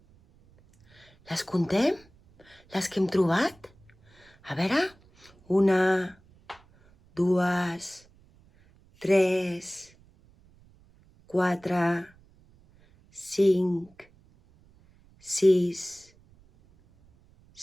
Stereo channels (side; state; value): right; noise; rumble, 29 dB below the sound